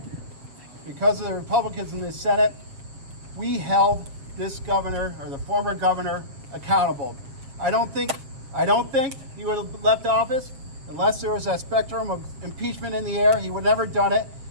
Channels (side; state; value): left; late; 7.4 ms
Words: because of the Republicans in the Senate, we held this governor, or the former governor, accountable. I don't think he would have left office unless there was that spectrum of impeachment in the air. He would have never done it,